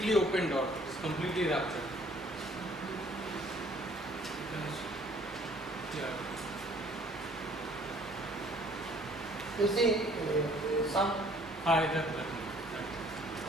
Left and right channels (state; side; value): normal; both; correlation 0.57